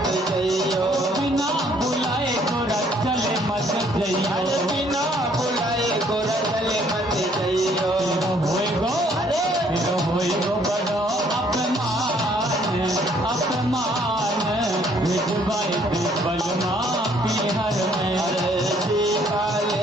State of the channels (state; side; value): normal; both; correlation 0.63